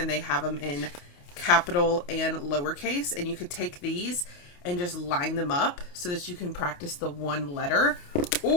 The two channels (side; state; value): right; late; 28 ms